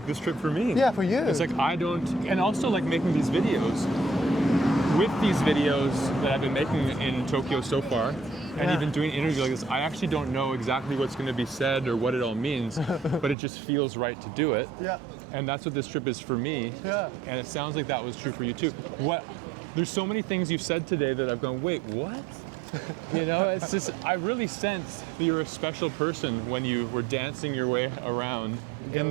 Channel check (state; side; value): drops out; left; at 13.4 s